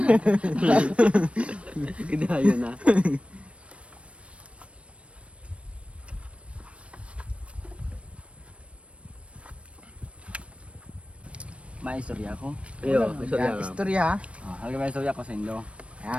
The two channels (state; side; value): late; left; 0.061 ms